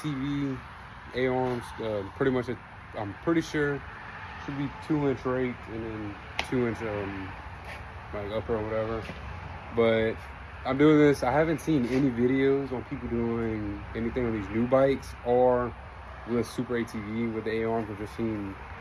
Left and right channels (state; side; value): identical; both; correlation 1.00